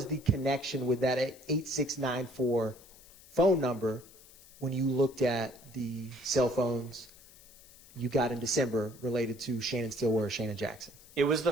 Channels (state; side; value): noise; left; hiss, 23 dB below the sound